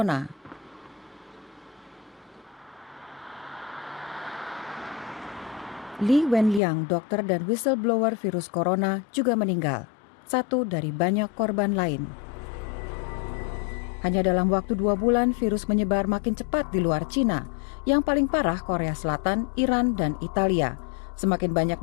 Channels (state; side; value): drops out; right; at 6.6 s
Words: Li Wenliang, dokter dan whistleblower virus corona, juga meninggal. Satu dari banyak korban lain. Hanya dalam waktu 2 bulan, virus menyebar makin cepat di luar Cina. Yang paling parah Korea Selatan, Iran, dan Italia. Semakin banyak